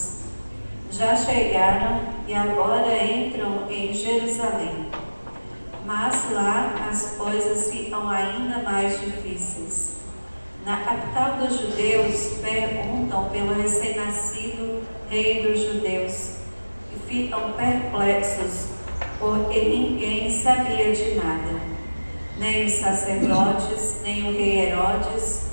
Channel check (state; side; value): inverted; both; correlation -1.00